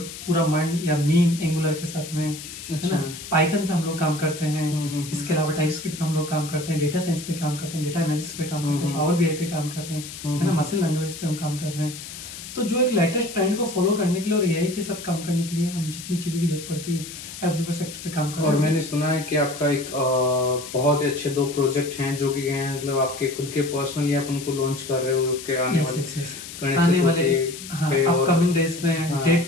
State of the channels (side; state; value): left; noise; hiss, 12 dB below the sound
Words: पूरा मंड या मीन एंगुलर के साथ में, है ना। पाइथन पे हम लोग काम करते हैं, इसके अलावा टाइपस्क्रिप्ट पे हम लोग काम करते हैं, डेटा साइंस पे काम करते हैं, डेटा एनालिसिस पे काम करते हैं, पावर BI पे काम कर रहे हैं, है ना, मशीन लर्निंग पे हम काम कर रहे हैं। तो जो एक लेटेस्ट ट्रेंड को फॉलो करने के लिए और AI के साथ काम करने के लिए हम जितनी चीज़ों की जरूरत पड़ती है एवरीवेयर सेक्टर पे काम कर रहे हैं। और मैंने सुना है कि आपका एक बहुत ही अच्छे 2 प्रोजेक्ट हैं जो कि हैं, मतलब आपके खुद के पर्सनली आप उनको लॉन्च कर रहे हो के आने वाले अपकमिंग डेज में। डेट